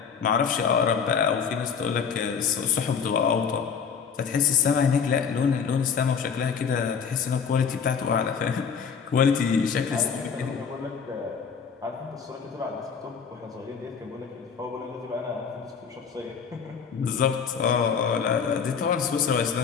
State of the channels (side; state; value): right; quieter; 6.5 dB